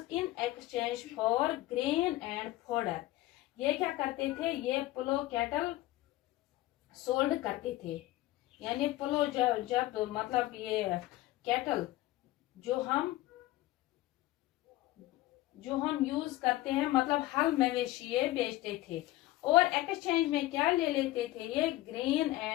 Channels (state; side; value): quieter; right; 16.9 dB